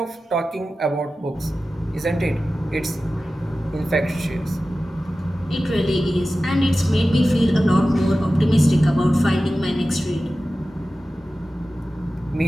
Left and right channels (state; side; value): normal; both; correlation 0.95